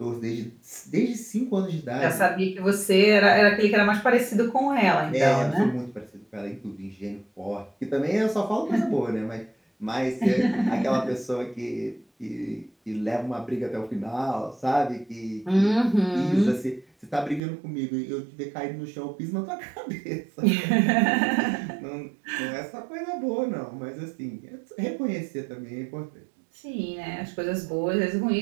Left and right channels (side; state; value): left; drops out; at 17.4 s